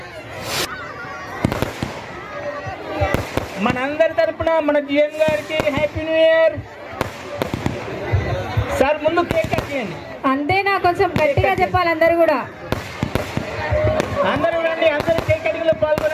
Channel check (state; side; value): identical; both; correlation 1.00